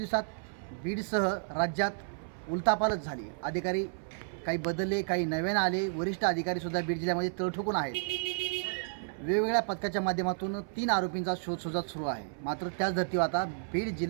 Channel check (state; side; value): silent; left; 57 dB below the other